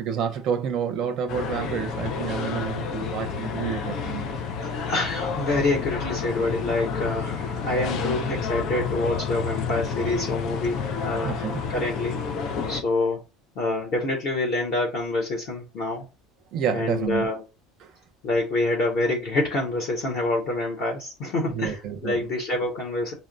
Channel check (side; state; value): both; normal; correlation 0.46